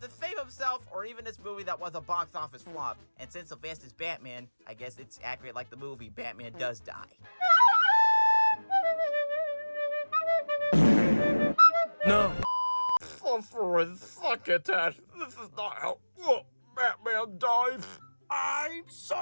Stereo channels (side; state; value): both; inverted; correlation -1.00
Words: to save himself or even this movie that was a box office flop. And since Sylvester is Batman, I guess it's accurate like the movie Batman does die. No. Suffering succotash. This is not how Batman dies. I'm